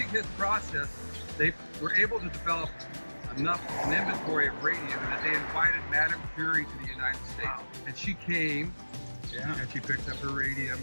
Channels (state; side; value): inverted; both; correlation -1.00